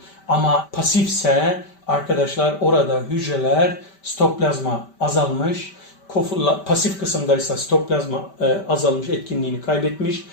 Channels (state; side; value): late; right; 5.1 ms